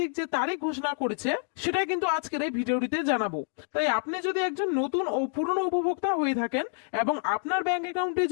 যে তারিখ ঘোষণা করেছে সেটাই কিন্তু আজকের এই ভিডিওটিতে জানাবো। তাই আপনি যদি একজন নতুন ও পুরনো উপভোক্তা হয়ে থাকেন এবং আপনার ব্যাংক অ্যাকাউন্টে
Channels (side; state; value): right; silent; 59 dB below the other